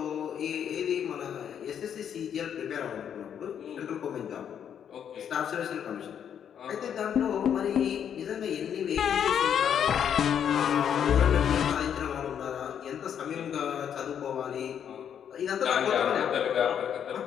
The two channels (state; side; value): quieter; right; 8.7 dB